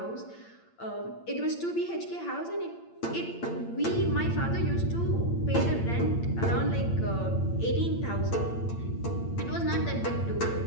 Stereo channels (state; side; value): late; right; 8.8 ms